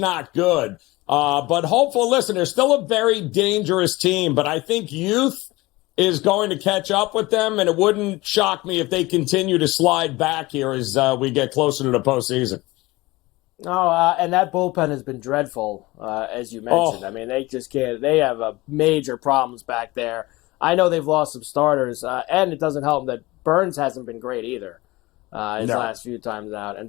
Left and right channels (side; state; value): right; quieter; 20.9 dB